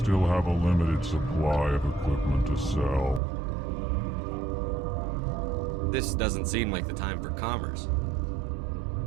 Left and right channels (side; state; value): left; drops out; at 3.2 s